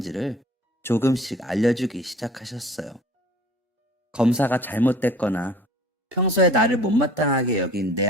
조금씩 알려주기 시작하셨어요. 검사가 잘못됐거나 평소에 나를 못마땅하게 여긴 내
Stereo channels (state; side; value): normal; both; correlation 0.48